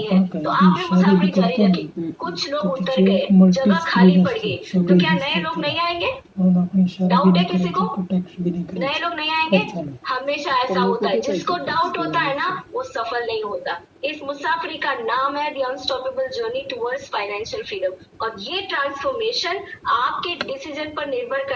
है, तो आपने मुसाफरी जारी रखी। कुछ लोग उतर गए, जगह खाली पड़ गई, तो क्या नए लोग नहीं आएंगे? हम अपनी शादी भी डाउट है नहीं किसी करेंगे को? तो टैक्स भी नहीं करेंगे। नए लोग नहीं आएंगे। अच्छा नहीं। हमेशा पर ऐसा लोगों होता है, को जिसको कैसे डाउट होता है ना टैक्स वो सफल नहीं होता। इस मुसाफिरी का नाम है the unstoppable journey towards financial freedom. और ये ट्रांसफॉर्मेशन आपके डिसीजन पर निर्भर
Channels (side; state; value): both; identical; correlation 1.00